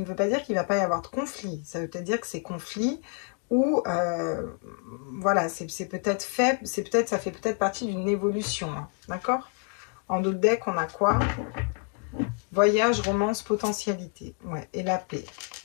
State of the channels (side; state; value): right; quieter; 37.6 dB